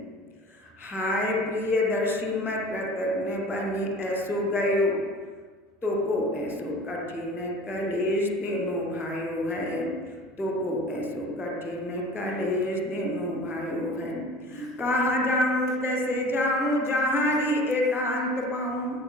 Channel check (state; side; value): normal; both; correlation 0.42